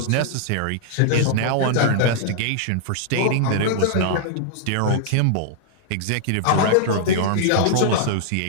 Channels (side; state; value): both; different; correlation -0.01